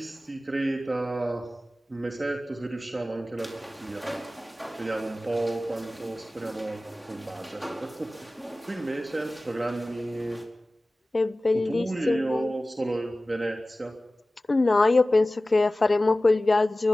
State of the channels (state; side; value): normal; both; correlation 0.97